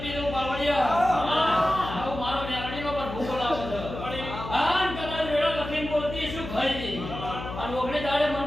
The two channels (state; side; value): noise; left; hum, 9 dB below the sound